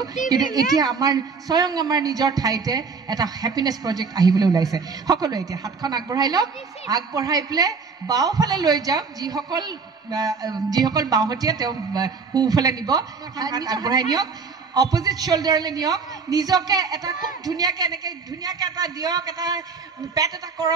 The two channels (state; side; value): quieter; left; 5.1 dB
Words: কিন্তু এতিয়া স্বয়ং আমাৰ নিজৰ ঠাইতে এটা হেপিনেছ প্ৰজেক্ট আহিবলৈ ওলাইছে সকলোৱে এতিয়া হাতখন আগবঢ়াই লওক আগবঢ়াই পেলাই বাওঁফালে লৈ যাওক যিসকল বাওঁহতীয়া তেওঁ সোঁফালে নিব আগবঢ়াই নিয়ক অপজিট শ্বল্ডাৰলৈ নিয়ক নিজকে এটা খুব ধুনীয়াকৈ এনেকৈ ধুনীয়াকৈ এটা দিয়ক এটা পেট এটা